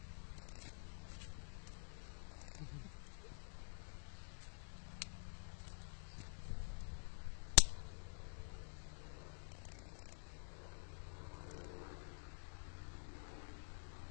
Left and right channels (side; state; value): right; silent; digital silence